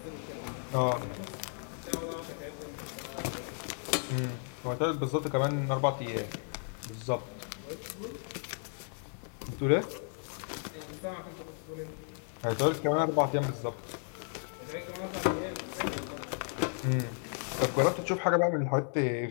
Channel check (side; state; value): right; silent; 55 dB below the other